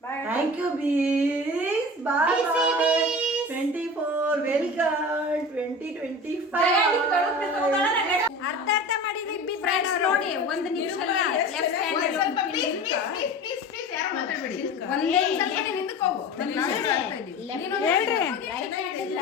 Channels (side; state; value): both; normal; correlation 0.34